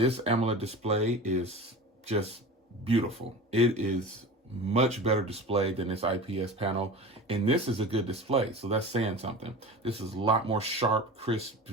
AMOLED display is just beautiful. It is much better display than this IPS panel, and this is a good display, so that's saying something. This is a lot more sharp, crisp,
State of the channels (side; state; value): both; normal; correlation 0.34